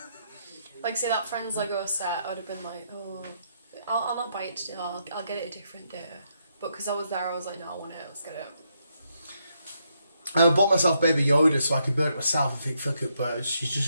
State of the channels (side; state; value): both; inverted; correlation -0.77